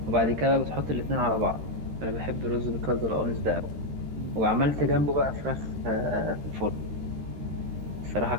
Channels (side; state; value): left; late; 13 ms